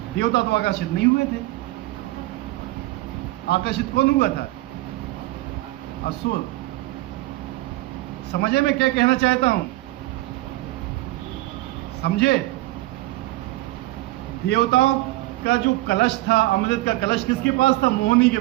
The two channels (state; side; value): quieter; left; 18.7 dB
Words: देवता तो आकर्षित नहीं हुए थे। आकर्षित कौन हुआ था? असुर। समझे मैं क्या कहना चाहता हूं? समझे? देवताओं का जो कलश था, अमृत का कलश, किसके पास था? मोहिनी के